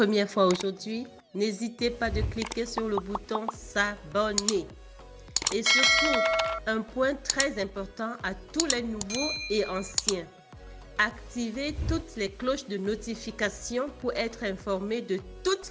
fois aujourd'hui, n'hésitez pas de cliquer sur le bouton s'abonner. Et surtout, un point très important à tous les nouveaux et anciens. Activez toutes les cloches de notification pour être informé de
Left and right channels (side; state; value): both; identical; correlation 1.00